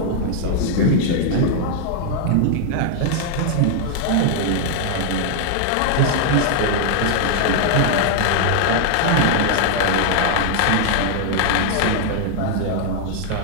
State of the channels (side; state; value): both; different; correlation 0.00